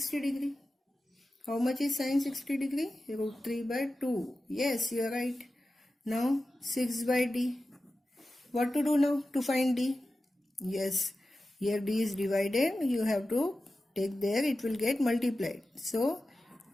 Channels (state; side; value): normal; both; correlation 0.93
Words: degree. How much is sin 60 degree? Root 3 by 2. Yes, you are right. Now 6 by D. What to do now to find D? Yes, here D is divided. You have to take there, it will get multiplied. So